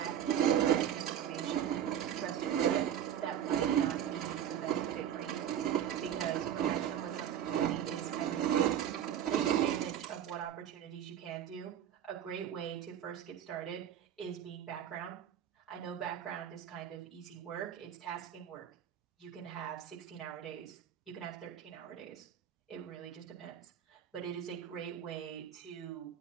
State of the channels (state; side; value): quieter; left; 9.9 dB